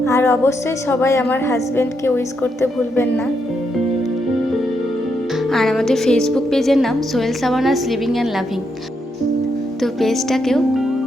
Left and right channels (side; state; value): both; normal; correlation 0.80